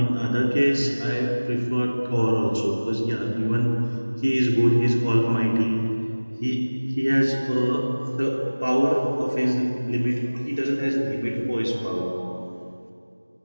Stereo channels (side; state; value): both; inverted; correlation -1.00